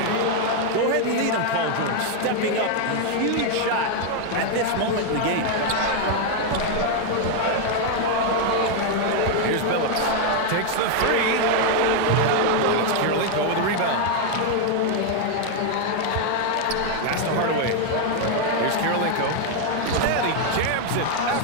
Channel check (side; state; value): both; different; correlation 0.01